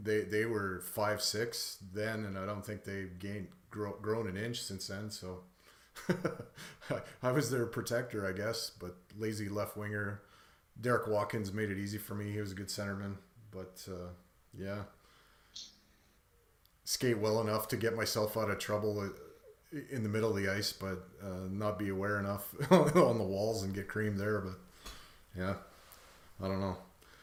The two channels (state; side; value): identical; both; correlation 1.00